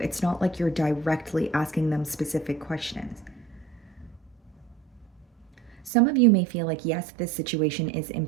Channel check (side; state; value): left; drops out; at 5.9 s